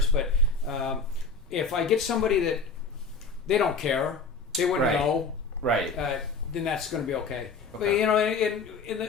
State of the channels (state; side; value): quieter; right; 4.3 dB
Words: but if I get somebody that they don't care, they wouldn't Right. know, Right. then that's going to be okay. But Okay. you know,